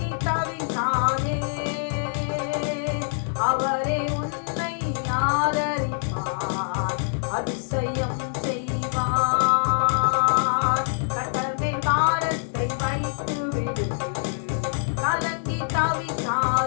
தவிக்காதே, அவரே உன்னை ஆதரிப்பார், அதிசயம் செய்வார். கர்த்தர் மேல் பாரத்தை வைத்து விடு, கலங்கி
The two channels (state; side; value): silent; right; 62 dB below the other